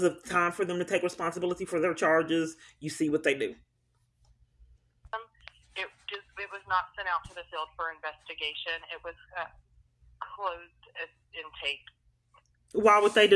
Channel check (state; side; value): identical; both; correlation 1.00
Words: to time for them to take responsibility for their charges, you see what they do. It was not sent out to the field for investigation. It was closed intake. Why would they